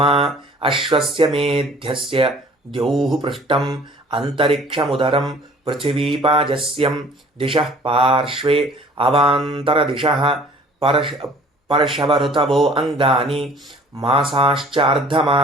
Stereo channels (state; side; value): normal; both; correlation 0.52